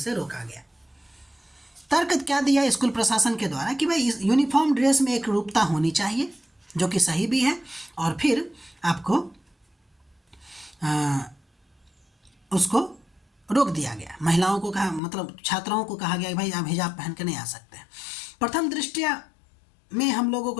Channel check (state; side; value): drops out; right; at 15.0 s